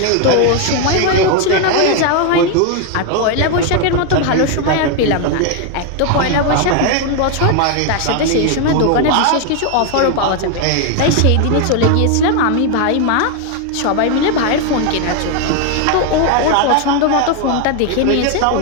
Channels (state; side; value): different; both; correlation 0.01